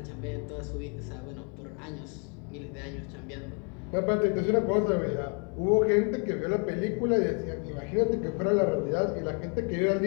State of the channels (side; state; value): right; quieter; 37.7 dB